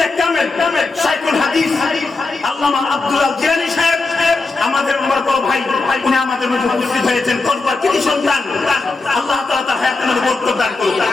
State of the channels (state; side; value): quieter; right; 3.6 dB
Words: কামেল শাইখুল হাদিস আল্লামা আব্দুল জিলানী সাহেব আমাদের আমার বড় ভাই, উনি আমাদের মধ্যে উপস্থিত হয়েছেন। কতবার কৃতি সন্তান, আল্লাহ তাআলা তার হায়াতের মধ্যে বরকত দান করুন।